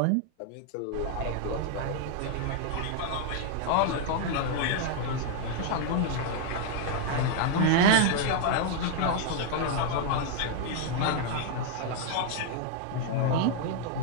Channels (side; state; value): both; different; correlation 0.00